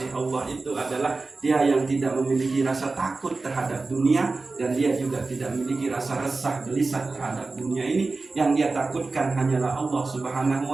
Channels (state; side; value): quieter; left; 3.7 dB